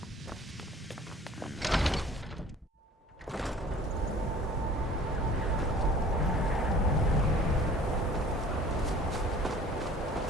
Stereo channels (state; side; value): normal; both; correlation 0.49